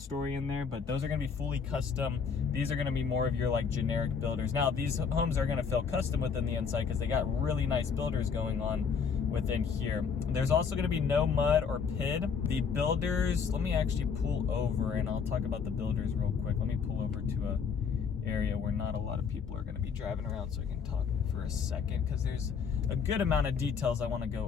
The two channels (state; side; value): quieter; right; 6.2 dB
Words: in there, but those are going to be fully custom. These are going to be more of your like generic builders. Now these homes are going to feel custom within the inside because they got really nice builders going on within here. There's also going to be no mud or PID. The builders, let me actually pull over and I'll talk about the builders real quick. Let me pull over to a area where not a lot of people are going to be driving around so I can talk for a second, because there's a good amount of details I want to